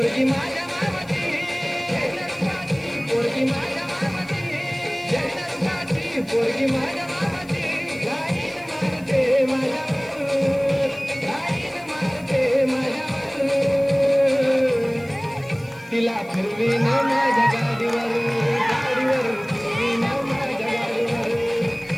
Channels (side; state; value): left; noise; hiss, 26 dB below the sound